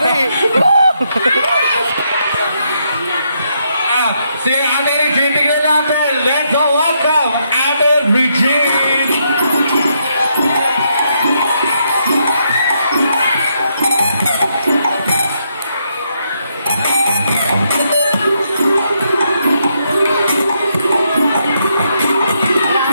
eh. Si ate Regine, tignan natin. Let's go welcome ate Regine!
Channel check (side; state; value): both; inverted; correlation -0.77